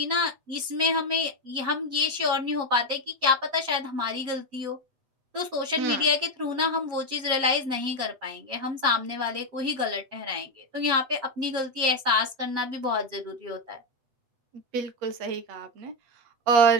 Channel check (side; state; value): left; late; 8.1 ms